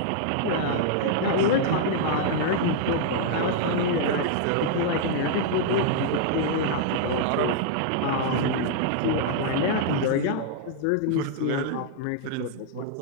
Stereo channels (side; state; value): both; different; correlation -0.01